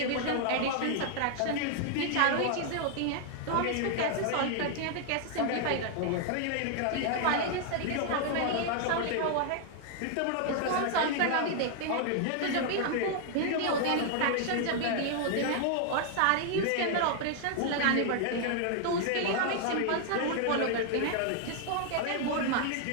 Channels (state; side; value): different; both; correlation 0.00